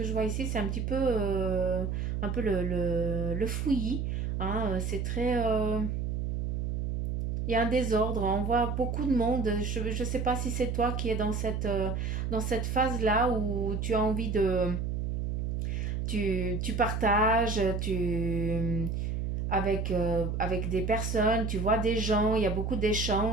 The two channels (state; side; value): noise; right; hum, 1 dB below the sound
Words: je vois ici, c'est un peu le fouillis. Hein, c'est très... il y a un désordre, on voit beaucoup de monde. Je ne sais pas si c'est toi qui es dans cette phase-là où tu as envie de... Tu partages, avec des personnes, tu vois des gens, il y a beaucoup